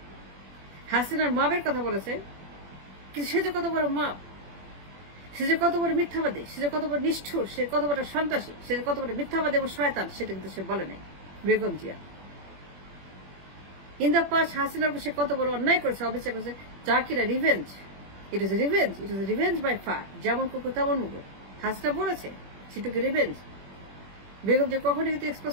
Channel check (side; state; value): left; late; 21 ms